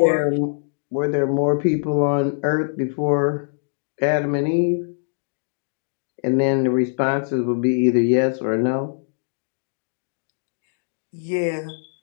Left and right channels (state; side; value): silent; right; digital silence